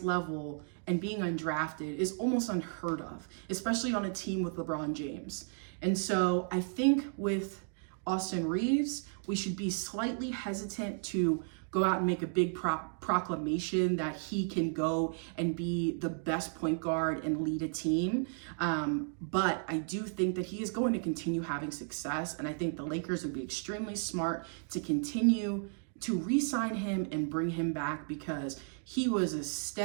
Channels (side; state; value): left; silent; 55 dB below the other